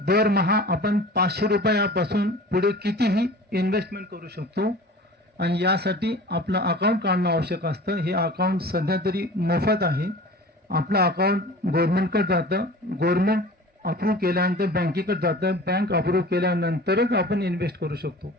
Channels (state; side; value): normal; both; correlation 0.40